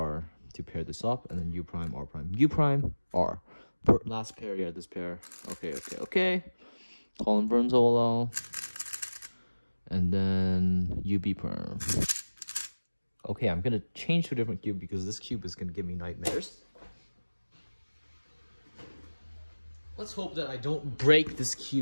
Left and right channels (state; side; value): inverted; both; correlation -1.00